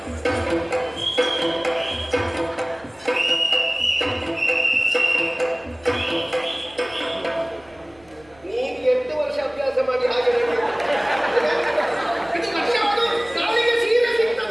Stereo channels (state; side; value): noise; right; rumble, 29 dB below the sound